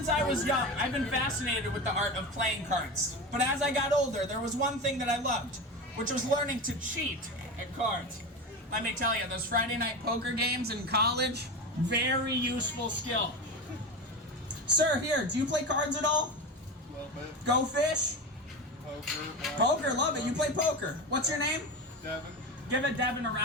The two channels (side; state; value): both; normal; correlation 0.24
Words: I was young, I've been fascinated with the art of playing cards. But as I got older, there was one thing that I loved, which was learning to cheat at cards. Let me tell you, those Friday night poker games in college, very useful skill. Sir, here, do you play cards at all? A little bit. Go fish? Poker. Poker, love it. You play poker. What's your name? Devin. Give it Devin a